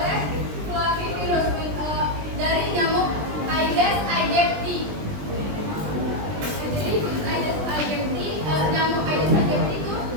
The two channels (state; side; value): late; left; 20 ms